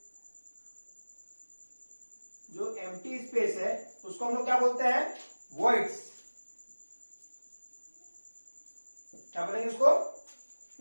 जो एम्प्टी स्पेस है, उसको हम लोग क्या बोलते हैं, वॉइड्स। क्या बोलेंगे उसको,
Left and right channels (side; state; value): both; inverted; correlation -1.00